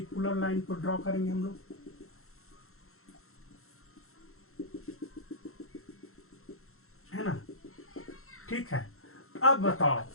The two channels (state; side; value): late; right; 0.62 ms